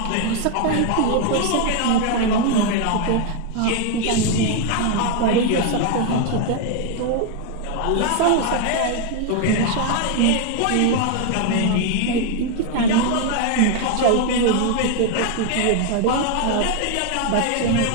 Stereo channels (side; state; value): both; different; correlation 0.01